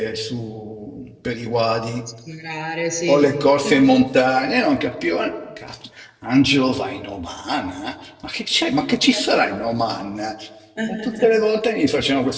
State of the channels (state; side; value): identical; both; correlation 1.00